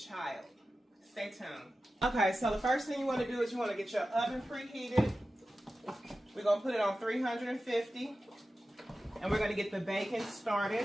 Stay tuned. Okay, so the first thing you want to do is you want to get your oven preheated. We're going to put it on 350, and we're going to get the bacon started.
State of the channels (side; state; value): both; normal; correlation 0.94